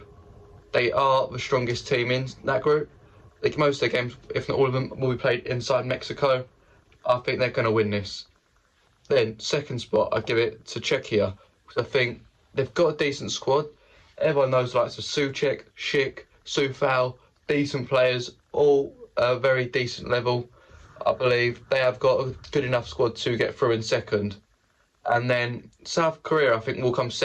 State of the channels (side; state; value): both; identical; correlation 1.00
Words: They are the strongest team in that group. Like most of their games, if not all of them, will be played inside Mexico. I think they're going to win this. Then, second spot, I give it to Czechia, because I think they've got a decent squad. Everyone knows the likes of Souček, Schick, Soufal, decent players, all very decent level. I believe they have got a good enough squad to get through in second. And then South Korea, I think, will come